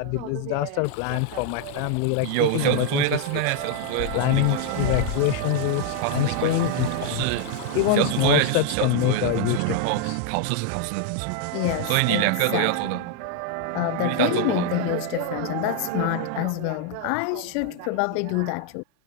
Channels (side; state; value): both; different; correlation 0.00